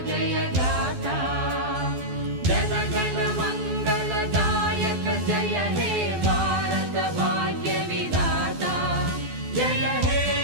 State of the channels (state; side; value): late; left; 12 ms